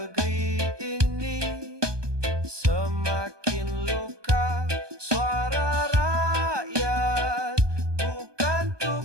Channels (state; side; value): late; left; 1.2 ms